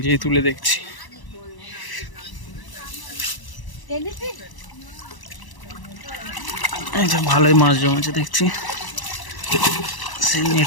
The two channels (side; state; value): right; late; 1.0 ms